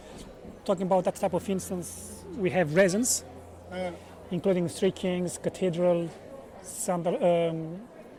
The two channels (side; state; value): both; identical; correlation 1.00